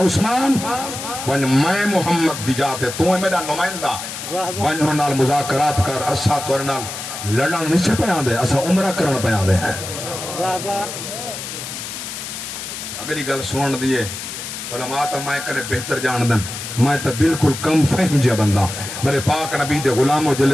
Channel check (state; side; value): noise; left; hiss, 8 dB below the sound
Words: عثمان ون میں محمد دی جاتے تو میرا نمائندہ ون نال مذاکرات کر اسا تو نال لڑنا نہیں سے پیان دے اسا عمرہ کرنا پیان دے ہیں اگلی گل سنن دیئے علماء تا میں کرے بہتر جان دن میں تا بالکل کم فہم جا بندہ میرے پاک نبی دے غلاموں